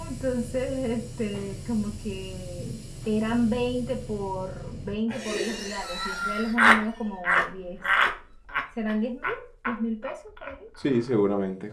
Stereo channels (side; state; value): both; identical; correlation 1.00